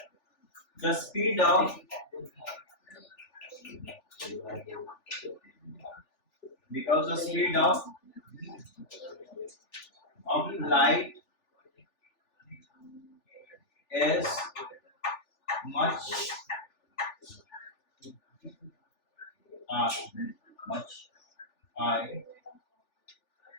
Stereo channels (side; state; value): right; late; 3.4 ms